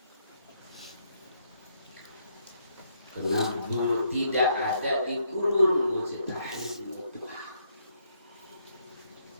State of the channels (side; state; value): both; inverted; correlation -0.74